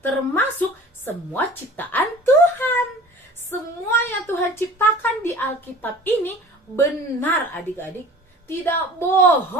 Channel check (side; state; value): both; normal; correlation 0.43